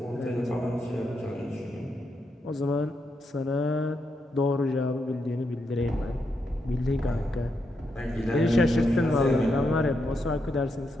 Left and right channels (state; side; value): normal; both; correlation 0.82